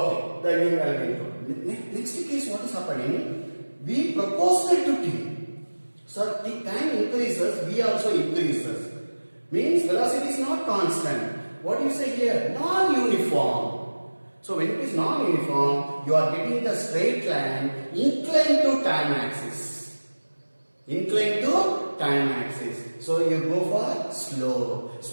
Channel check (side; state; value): both; inverted; correlation -1.00